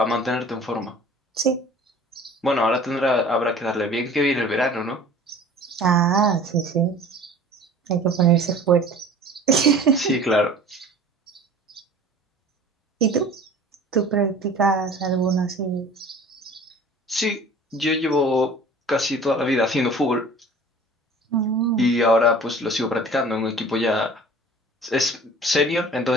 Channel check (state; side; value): normal; both; correlation 0.45